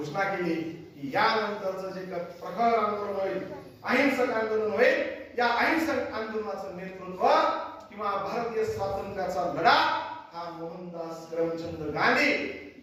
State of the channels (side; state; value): both; identical; correlation 1.00